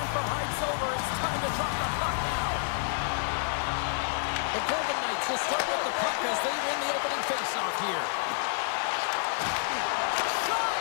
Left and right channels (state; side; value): silent; right; digital silence